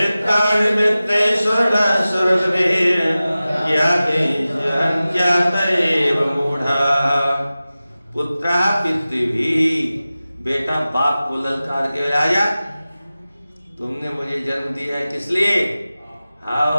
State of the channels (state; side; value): inverted; both; correlation -0.96